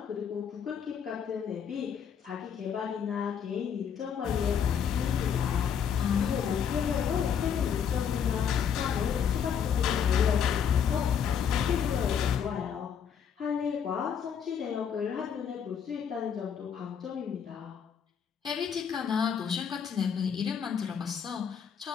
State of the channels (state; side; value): quieter; right; 7.7 dB